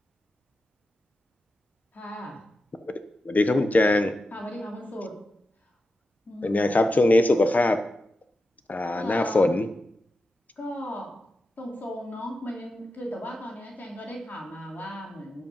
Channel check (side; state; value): both; normal; correlation 0.90